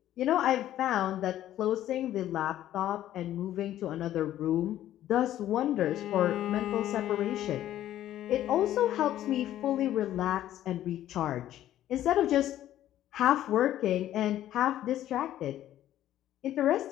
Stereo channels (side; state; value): right; quieter; 12.7 dB